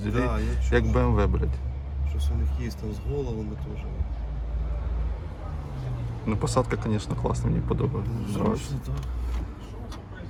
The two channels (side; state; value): both; identical; correlation 1.00